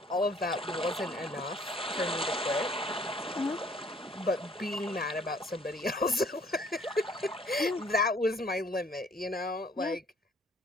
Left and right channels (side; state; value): both; normal; correlation 0.59